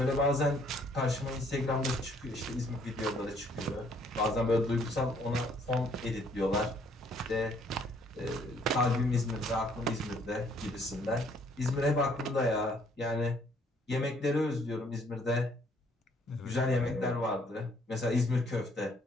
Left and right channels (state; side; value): normal; both; correlation 0.64